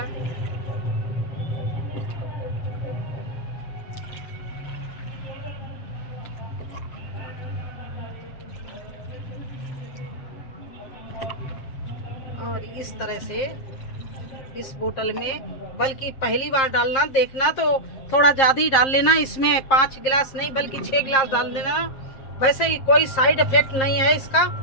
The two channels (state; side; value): late; right; 7.5 ms